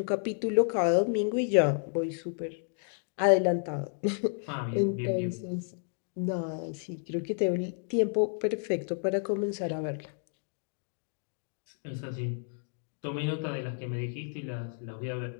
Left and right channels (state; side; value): silent; right; 57 dB below the other